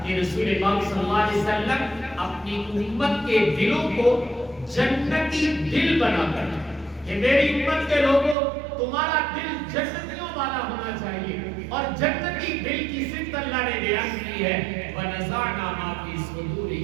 کہ رسول پاک صلی اللہ علیہ وسلم اپنی امت کے دلوں کو جنتی دل بنا کر کہ میری امت کے لوگوں تمہارا دل جنتیوں والا ہونا چاہیے، اور جنتی دل کی صفت اللہ نے بیان کی ہے وَنَزَعْنَا مَا فِي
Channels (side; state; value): left; drops out; at 8.3 s